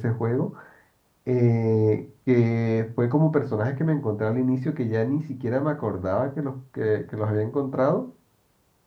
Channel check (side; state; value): both; identical; correlation 1.00